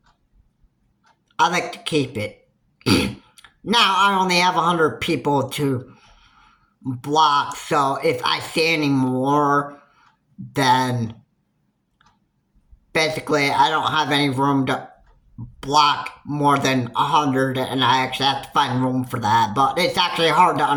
I like to keep it. Now I only have 100 people to block, so if I see any more, then basically I don't have any room to block more than 100, and I actually have to find room for that. But it's actually hard to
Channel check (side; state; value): both; identical; correlation 1.00